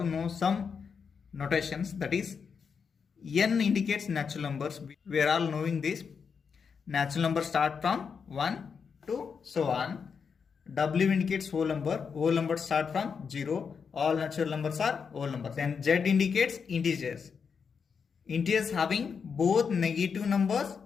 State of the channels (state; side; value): quieter; right; 6.1 dB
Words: know some notations, that is N indicates natural numbers. We are all knowing this. Natural numbers start from 1 to so on. W indicates whole number. Whole numbers start from 0. All natural numbers are whole numbers. Then Z indicates integers. Integers having both negative numbers